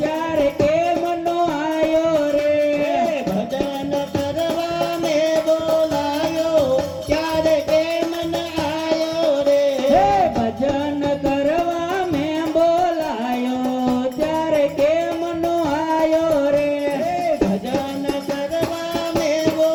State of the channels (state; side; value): identical; both; correlation 1.00